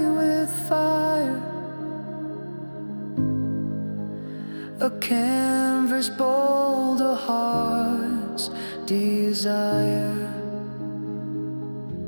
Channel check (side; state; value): both; inverted; correlation -1.00